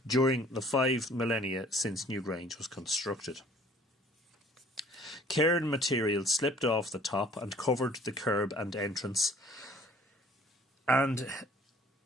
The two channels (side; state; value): both; normal; correlation 0.54